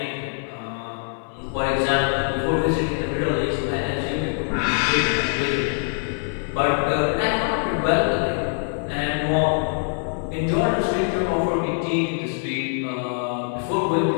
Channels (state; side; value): silent; right; 63 dB below the other